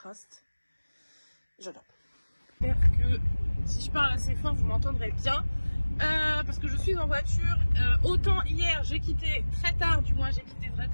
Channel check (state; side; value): inverted; both; correlation -1.00